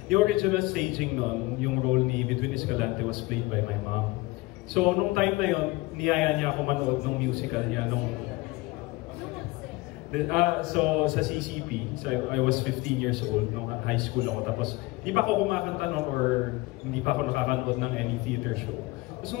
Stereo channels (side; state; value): right; quieter; 21.6 dB